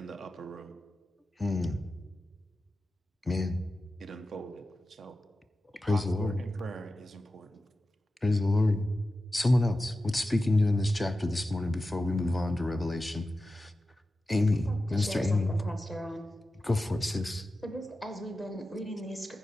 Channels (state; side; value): normal; both; correlation 0.93